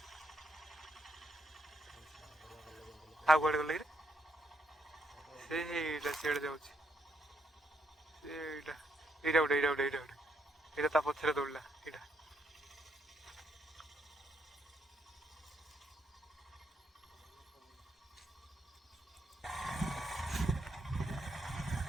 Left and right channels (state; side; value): normal; both; correlation 0.76